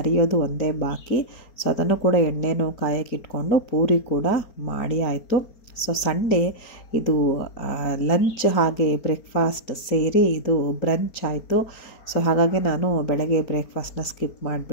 ಒಂದೇ ಬಾಕಿ. ಸೊ ಅದನ್ನು ಕೂಡ ಎಣ್ಣೆನೂ ಕಾಯಕ್ಕೆ ಇಟ್ಕೊಂಡು ಪೂರಿ ಕೂಡ ಮಾಡಿ ಆಯಿತು. ಸೊ ಸಂಡೇ ಇದು ಲಂಚ್ ಹಾಗೆ ಬ್ರೇಕ್ಫಾಸ್ಟ್ ಸೇರಿ ಇದು ಬ್ರಂಚ್ ಆಯಿತು. ಸೊ ಹಾಗಾಗಿ ನಾನು ಬೆಳಗ್ಗೆ ಬ್ರೇಕ್ಫಾಸ್ಟ್ನ ಸ್ಕಿಪ್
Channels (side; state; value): right; late; 4.4 ms